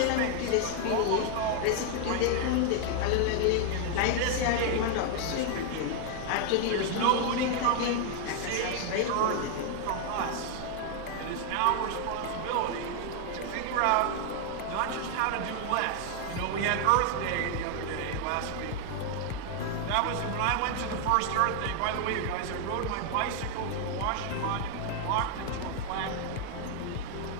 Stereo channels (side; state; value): both; different; correlation 0.00